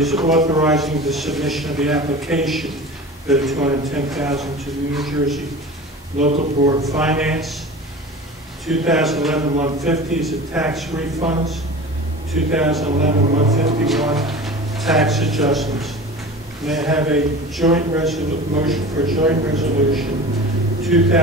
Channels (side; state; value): both; normal; correlation 0.36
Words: authorizing the submission of the application for the $210,000 to the New Jersey Local Board of Finance. 2011-150 is the tax refunds. 2011-151 tax adjustments. May I have a joint motion for a joint resolution